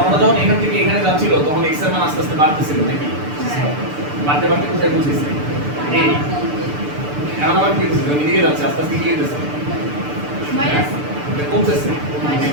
যখন এখান থেকে এখানে যাচ্ছিল, তখন x এর মান আস্তে আস্তে বাড়তেছিল নাকি? বাড়তে বাড়তে কোথায় পৌঁছেছে? এই এখন আবার কি হচ্ছে? এদিকে যাচ্ছে, আস্তে আস্তে কি হইতেছে? মাইনাস কমতেছে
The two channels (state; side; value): late; left; 6.8 ms